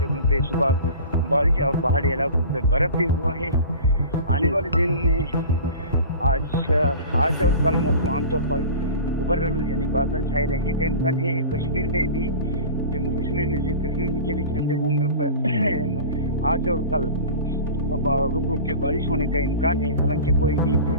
जगहों पे सुबह बारिश और पहाड़ी इलाकों पे बर्फ़ भी हुआ है। आने वाले दिनों में आज और कल मौसम आमतौर पर उबरल यानी बादल छाए रहने का इम्कान है। कश्मीर में भी, जम्मू कश्मीर में कश्मीर के भी चंद जगहों पर आज और कल रुक रुक के बारिश होने का इम्कान है। हालांकि कोई भी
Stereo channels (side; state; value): both; inverted; correlation -0.37